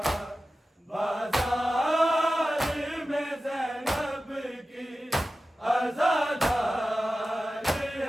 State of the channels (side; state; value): both; normal; correlation 0.94